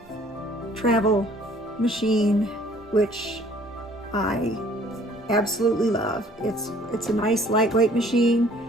travel machine, which I absolutely love. It's a nice lightweight machine,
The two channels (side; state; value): both; normal; correlation 0.56